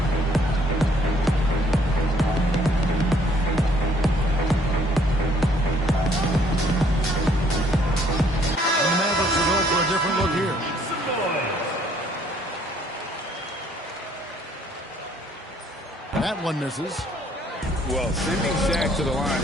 That one misses. Well, sending Shaq to the line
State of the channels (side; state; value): both; normal; correlation 0.63